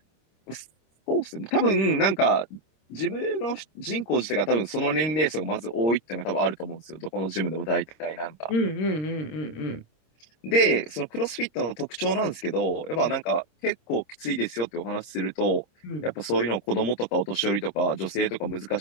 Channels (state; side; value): late; right; 26 ms